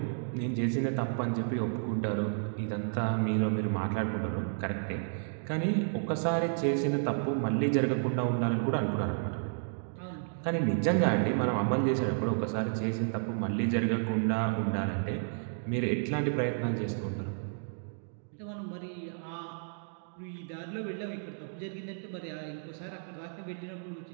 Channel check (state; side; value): silent; left; digital silence